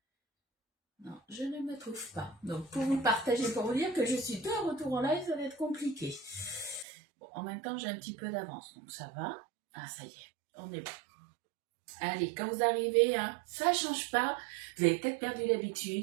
Non, je ne me trouve pas. Donc, pour vous partager, pour vous dire que je suis de retour en live, ça va être compliqué. Bon, en même temps, j'ai un petit peu d'avance, donc ça va. Ah, ça y est, on est bon. Allez, quand vous arrivez, hein, ça change pas. Vous avez peut-être perdu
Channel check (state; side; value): drops out; left; at 6.9 s